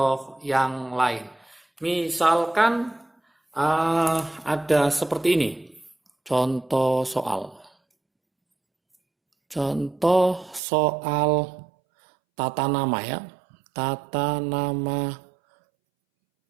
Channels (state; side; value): drops out; left; at 10.6 s